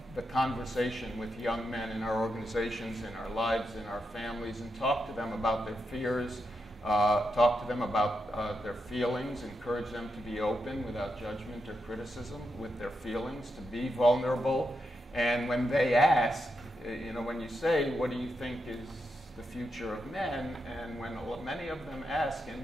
the conversation with young men in our organizations, in our lives, in our families, and talk to them about their fears, talk to them about their feelings, encourage them to be open without judgment or criticism with their feelings, to be vulnerable. And when they ask, when you say, what do you think is the future of men? And when many of them ask, and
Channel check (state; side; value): normal; both; correlation 0.85